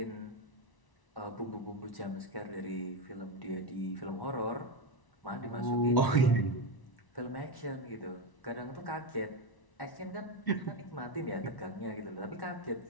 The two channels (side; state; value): right; late; 1.0 ms